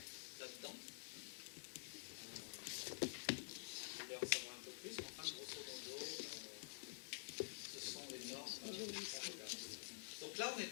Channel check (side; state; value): right; silent; digital silence